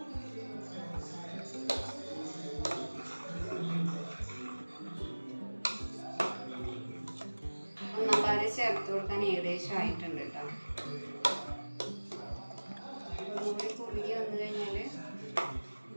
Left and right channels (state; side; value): inverted; both; correlation -1.00